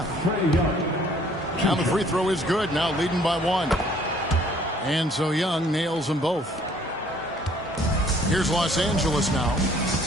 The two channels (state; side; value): normal; both; correlation 0.59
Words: Now the free throw is good. Now leading by 1. And so Young nails them both. Here's Los Angeles now.